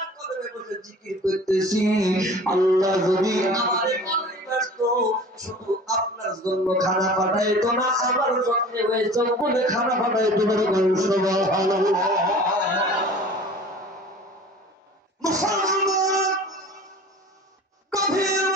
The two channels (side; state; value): both; normal; correlation 0.43